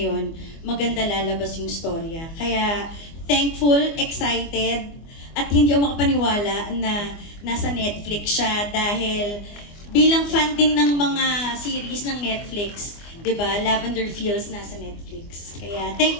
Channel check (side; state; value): right; late; 24 ms